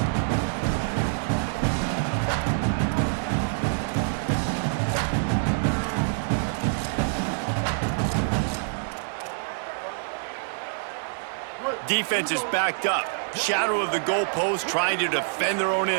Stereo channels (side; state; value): left; silent; 61 dB below the other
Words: Defense is backed up. Shadow of the goalpost trying to defend their own